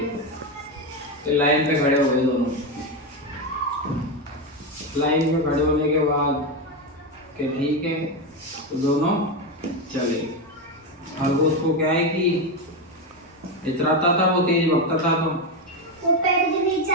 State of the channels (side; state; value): both; normal; correlation 0.11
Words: तो लाइन पे खड़े हो गए दोनों। लाइन में खड़े होने के बाद कि ठीक है, तो दोनों चले। खरगोश को क्या है कि इतराता था वो, तेज भगता था, तो वो पेड़ के नीचे